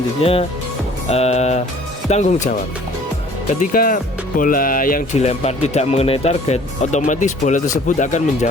tanggung jawab. Ketika bola yang dilempar tidak mengenai target, otomatis bola tersebut akan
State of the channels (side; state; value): both; normal; correlation 0.52